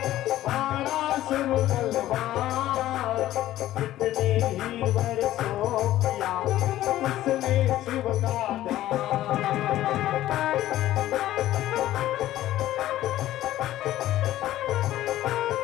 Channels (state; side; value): quieter; right; 14.2 dB